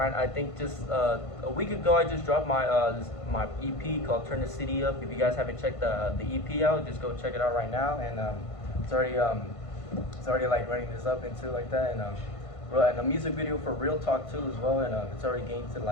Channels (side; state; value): right; late; 1.5 ms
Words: think just a week ago, I just dropped my EP called "Turn the City Up." If you guys haven't checked the EP out, just go check it out right now. And it's already like running this up into like that. And a music video for Real Talk too as well. And it's already gained to